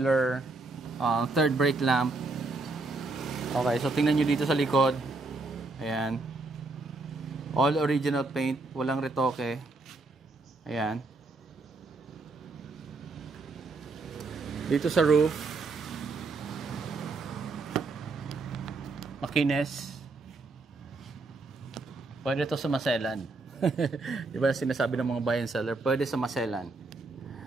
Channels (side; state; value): left; quieter; 3.4 dB